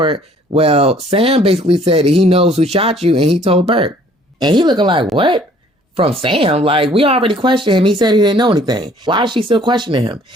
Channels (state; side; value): normal; both; correlation 0.57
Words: well, Sam basically said that he knows who shot you and he told Burke. And he looking like, what? From Sam? Like, we already questioned him. He said he didn't know anything. Why is she still questioning him?